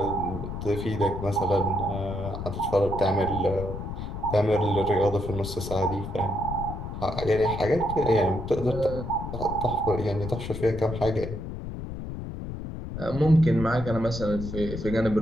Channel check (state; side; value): noise; left; rumble, 7 dB below the sound